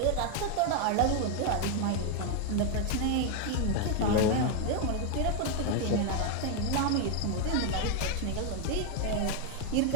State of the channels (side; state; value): both; different; correlation 0.01